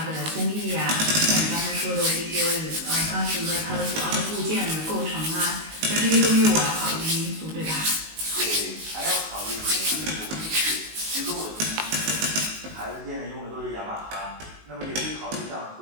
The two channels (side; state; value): left; late; 19 ms